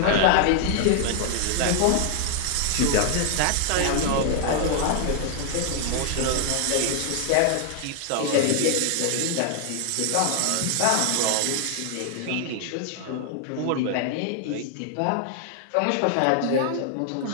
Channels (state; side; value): different; both; correlation 0.00